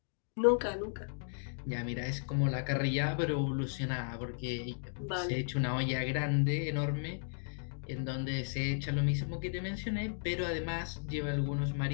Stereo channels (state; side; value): silent; right; digital silence